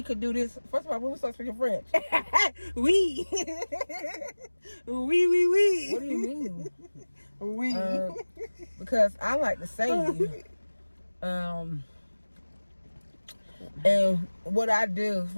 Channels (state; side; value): inverted; both; correlation -1.00